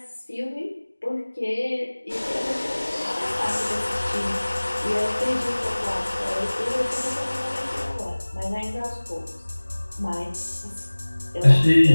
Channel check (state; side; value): inverted; both; correlation -1.00